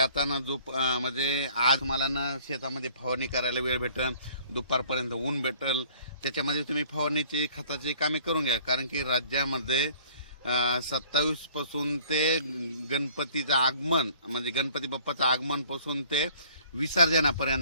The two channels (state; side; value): inverted; both; correlation -0.54